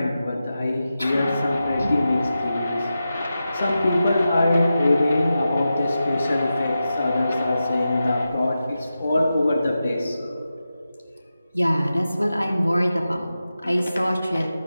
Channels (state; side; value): inverted; both; correlation -0.92